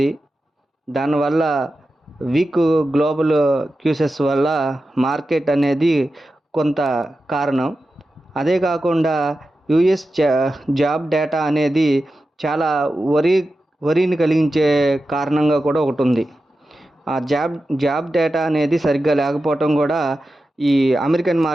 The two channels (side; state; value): both; normal; correlation 0.92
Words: దానివల్ల వీక్ గ్లోబల్ క్యూసెస్ వల్ల మార్కెట్ అనేది కొంత కారణం. అదే కాకుండా యుఎస్ జాబ్ డేటా అనేది చాలా వరిని కలిగించే కారణంగా కూడా ఒకటి ఉంది. ఆ జాబ్ డేటా అనేది సరిగ్గా లేకపోవటం కూడా ఈ అమెరికన్